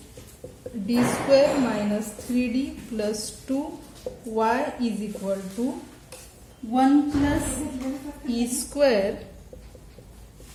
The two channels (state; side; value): identical; both; correlation 1.00